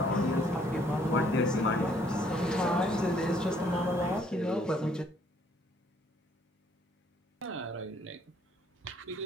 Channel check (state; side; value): normal; both; correlation 0.64